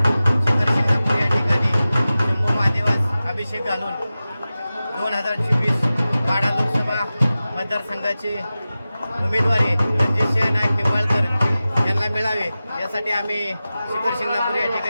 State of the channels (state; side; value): inverted; both; correlation -0.95